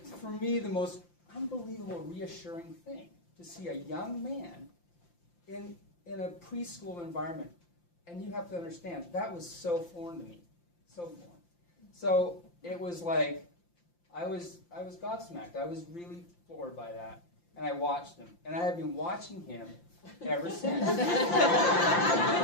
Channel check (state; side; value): late; right; 5.8 ms